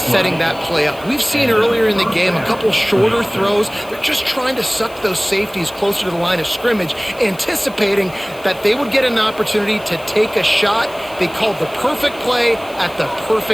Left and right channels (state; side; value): noise; left; hiss, 22 dB below the sound